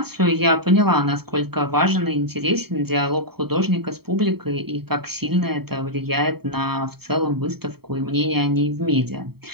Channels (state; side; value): late; left; 0.96 ms